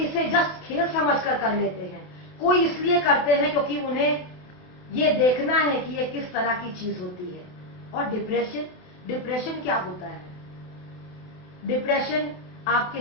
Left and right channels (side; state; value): right; late; 28 ms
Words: जस्ट खेल समझकर कर लेते हैं, कोई इसलिए करते हैं क्योंकि उन्हें ये देखना है कि ये किस तरह की चीज होती है। और डिप्रेशन क्या होता है? डिप्रेशन आपके